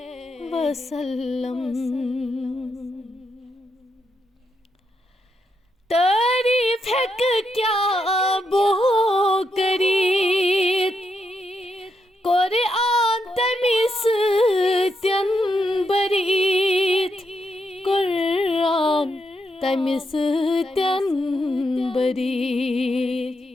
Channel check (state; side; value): normal; both; correlation 0.81